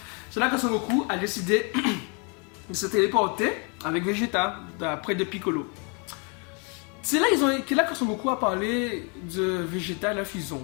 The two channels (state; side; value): quieter; right; 35.0 dB